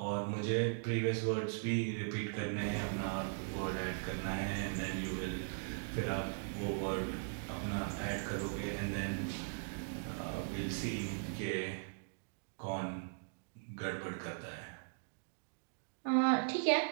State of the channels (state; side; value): silent; left; digital silence